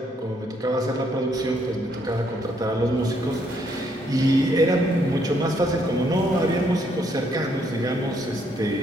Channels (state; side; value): normal; both; correlation 0.71